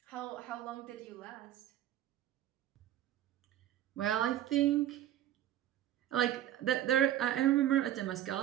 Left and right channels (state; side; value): quieter; left; 12.3 dB